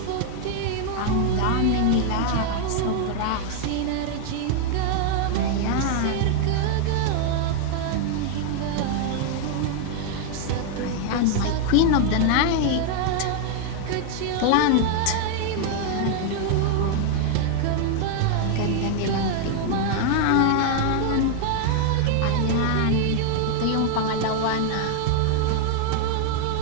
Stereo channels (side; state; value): both; different; correlation 0.00